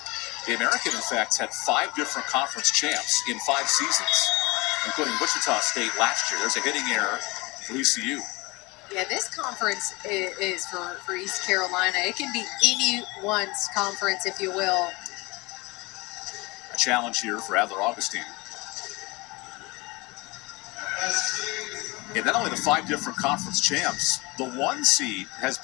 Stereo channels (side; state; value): right; quieter; 24.8 dB